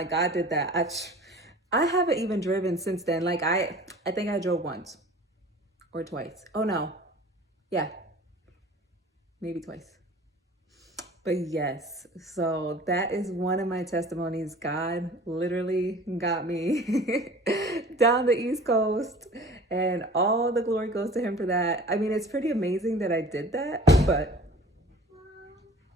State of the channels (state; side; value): normal; both; correlation 0.44